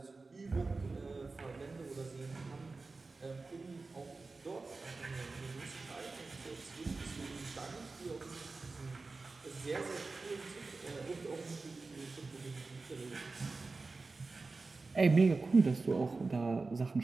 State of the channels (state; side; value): quieter; left; 3.8 dB